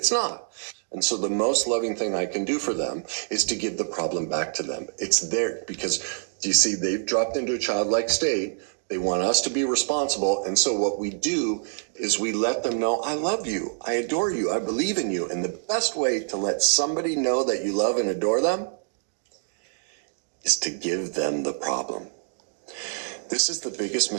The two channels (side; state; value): left; silent; digital silence